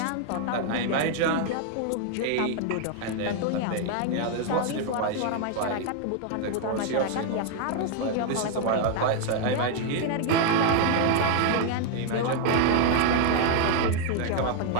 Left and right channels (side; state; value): both; different; correlation 0.00